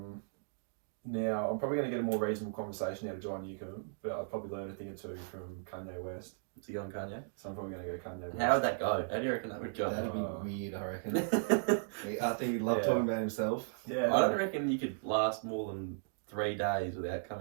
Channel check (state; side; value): silent; left; digital silence